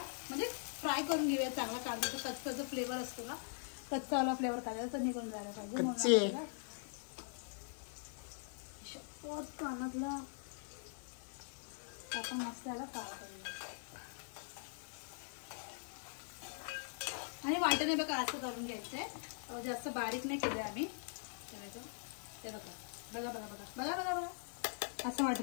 म्हणजे फ्राय करून घेऊया चांगला. कांद्याचा कच्चा जो फ्लेवर असतो ना, कच्चावाला फ्लेवर कांद्याचा निघून जायला पाहिजे. कानातला आपण मस्त त्याला फ्राय करूया. आणि वाटणे बघा असं करून घ्यायचंय, जास्त बारीक नाही केलंय आम्ही. ते बघा बघा बघा बघा बघा बघा बघा असं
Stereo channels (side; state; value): right; silent; digital silence